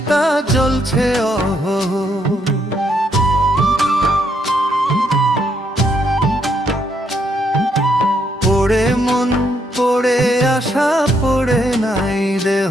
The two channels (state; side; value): normal; both; correlation 0.74